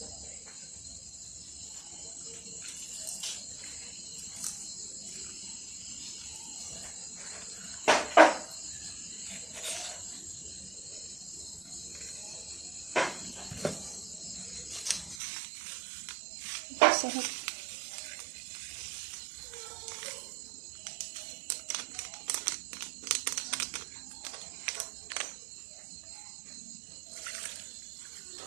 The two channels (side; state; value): left; drops out; at 15.2 s